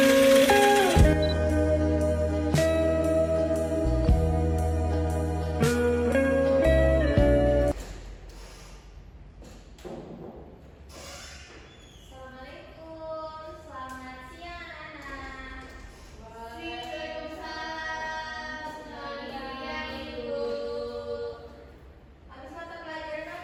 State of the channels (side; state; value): both; identical; correlation 1.00